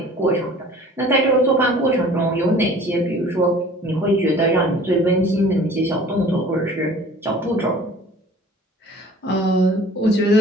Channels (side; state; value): both; normal; correlation 0.48